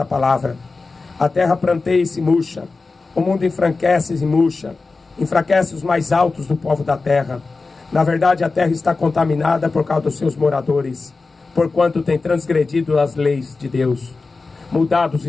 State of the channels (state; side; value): quieter; right; 3.9 dB